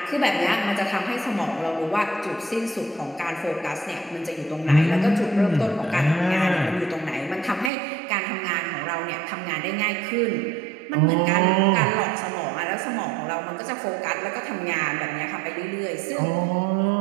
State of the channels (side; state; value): left; drops out; at 7.7 s